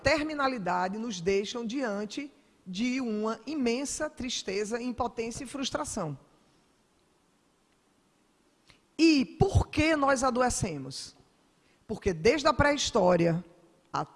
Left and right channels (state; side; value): identical; both; correlation 1.00